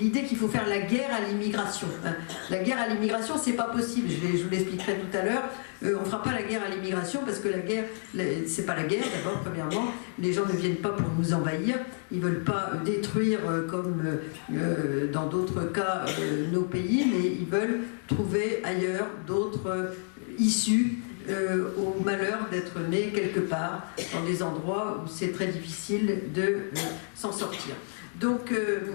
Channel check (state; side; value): silent; right; 58 dB below the other